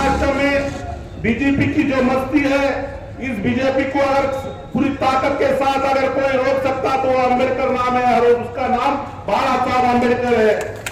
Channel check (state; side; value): identical; both; correlation 1.00